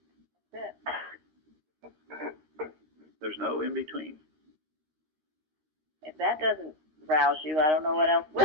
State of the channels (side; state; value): left; late; 13 ms